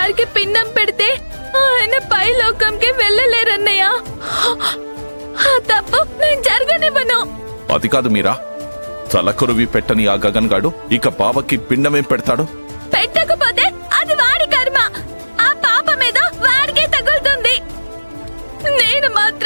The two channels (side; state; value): both; inverted; correlation -1.00